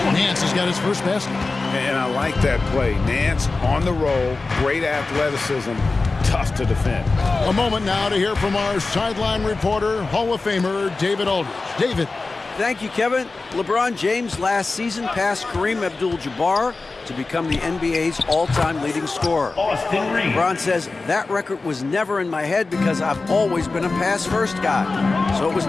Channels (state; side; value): quieter; right; 3.7 dB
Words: Nance has got his first basket. And I like that play. Nance on the roll, great athleticism, tough to defend. A moment now to hear from our sideline reporter, Hall of Famer David Aldridge. David. Thank you, Kevin. LeBron James last season passed Kareem Abdul-Jabbar to become the NBA's all-time leading scorer. LeBron says, that record was never in my head because I've always been a pass-first guy, so it was